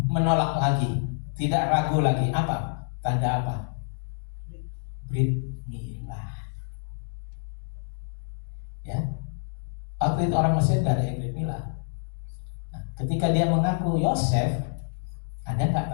menolak lagi, tidak ragu lagi? Apa? Tanda apa? Brit milah. Ya. Waktu itu orang Mesir gak ada yang brit milah. Nah, ketika dia mengaku Yosef, ada nggak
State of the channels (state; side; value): silent; right; digital silence